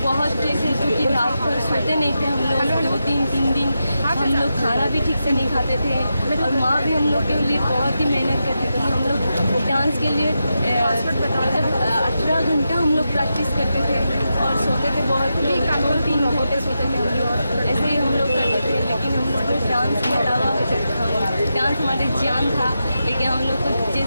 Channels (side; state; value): both; inverted; correlation -0.88